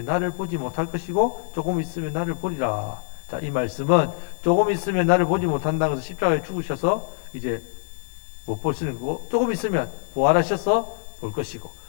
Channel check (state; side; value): silent; right; digital silence